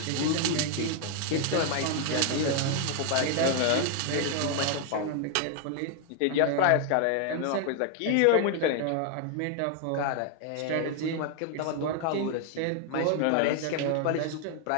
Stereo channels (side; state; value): both; different; correlation 0.00